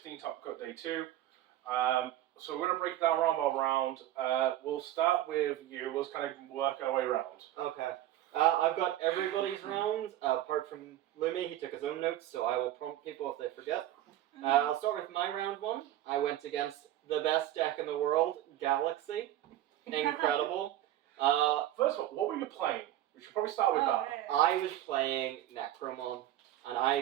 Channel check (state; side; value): quieter; left; 13.4 dB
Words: top cut day 2. So we're going to break it down round by round. We'll start with you. We'll just kind of work our way around. Okay. I've got everybody's rounds, apart from Lumi. He took his own notes, so I will prompt people if they forget. I'll start with my round 1. I went against the best deck in the world, Galaxy. Incredible. First of all, what were you playing? We should probably start with that. I was playing Necromon, and